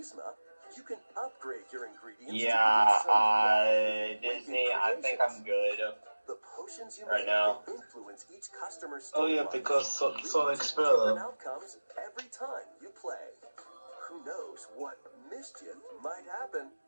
you can upgrade your ingredients. to Yeah, produce some Disney, wicked I think creations. I'm good. The potions you right make now. will influence each customer's Oh yeah, storylines, because leading Sonic to Spiller. different outcomes every time you play. Who knows what mischief might happen?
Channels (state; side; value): inverted; both; correlation -1.00